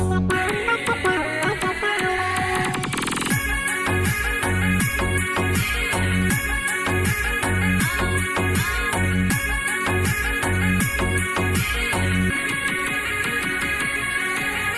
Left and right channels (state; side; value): identical; both; correlation 1.00